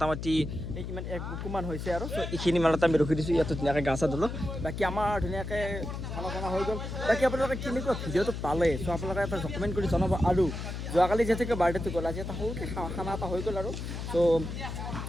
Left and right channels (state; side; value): noise; left; hum, 6 dB below the sound